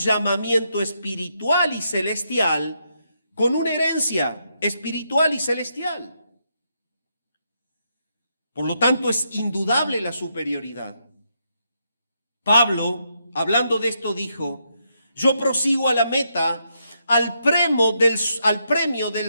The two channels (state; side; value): inverted; both; correlation -0.79